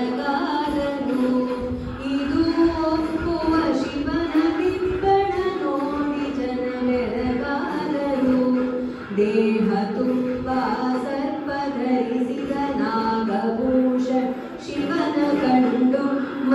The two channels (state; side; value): identical; both; correlation 1.00